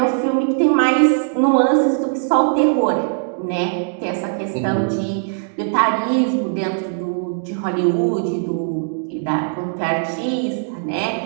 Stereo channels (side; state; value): left; silent; digital silence